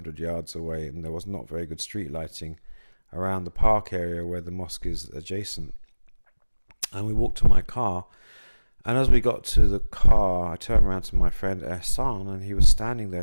yards away, and there was not very good street lighting around the park area where the mosque is adjacent. And we walked to my car, and as we got to the car, I turned around to my friend Hassan, and he was standing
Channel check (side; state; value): both; inverted; correlation -1.00